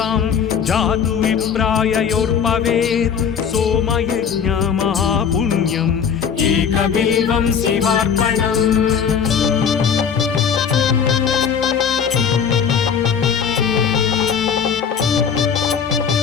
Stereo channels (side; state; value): right; quieter; 7.1 dB